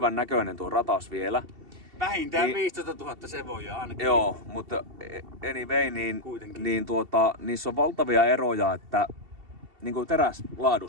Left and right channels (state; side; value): late; left; 2.7 ms